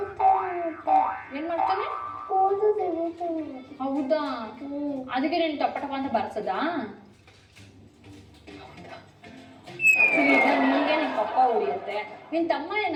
ಏನ್ ಮಾಡ್ತಾನೆ? ಮೂದು ತೆಗಿತಾನೆ. ಹೌದಾ? ಅದಕ್ಕೆ ನೀನು ಟಪ ಟಪ ಅಂತ ಬರ್ಸದಾ? ಸರಿ, ಈಗ ನಿಮ್ಗೆ ನಿಮ್ ಪಪ್ಪ ಹೊಡಿಯತ್ತೆ, ನಿನ್ ತಮ್ಮ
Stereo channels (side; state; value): both; identical; correlation 1.00